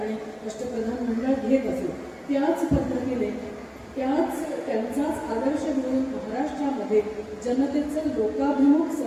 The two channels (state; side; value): identical; both; correlation 1.00